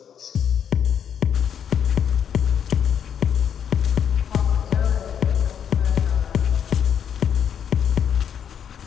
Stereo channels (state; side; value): quieter; right; 8.4 dB